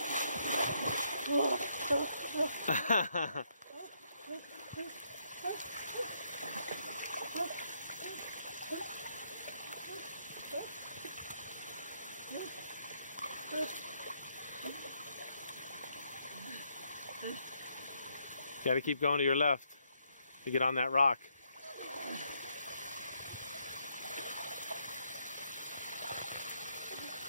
You gotta keep going to your left to get on that rock.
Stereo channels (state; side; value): inverted; both; correlation -0.75